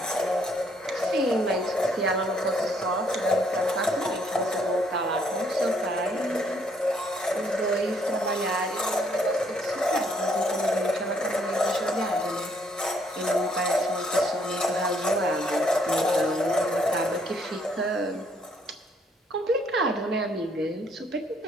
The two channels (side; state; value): both; normal; correlation 0.68